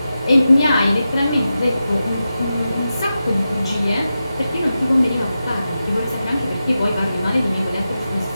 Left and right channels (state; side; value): inverted; both; correlation -0.91